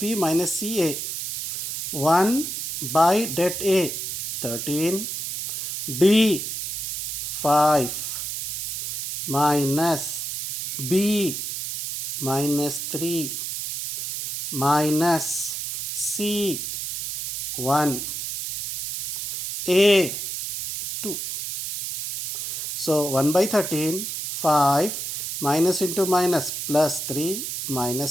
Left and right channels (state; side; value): noise; right; hiss, 4 dB below the sound